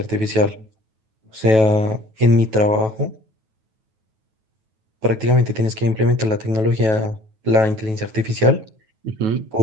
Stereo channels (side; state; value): left; late; 9.2 ms